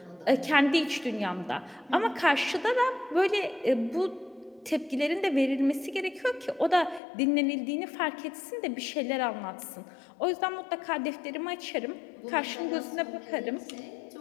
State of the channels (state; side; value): drops out; right; at 7.0 s